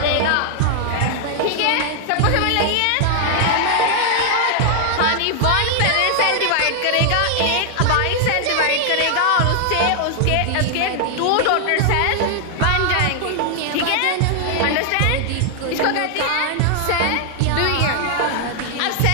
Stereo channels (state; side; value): different; both; correlation 0.00